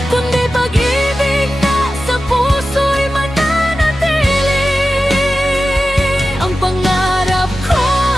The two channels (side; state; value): both; normal; correlation 0.93